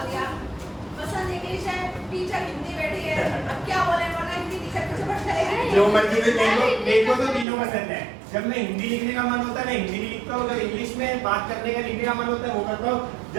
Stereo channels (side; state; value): left; drops out; at 7.5 s